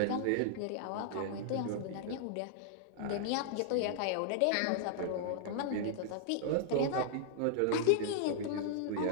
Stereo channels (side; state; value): both; different; correlation -0.01